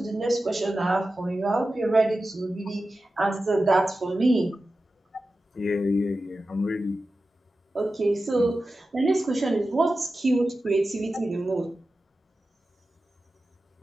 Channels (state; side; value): normal; both; correlation 0.93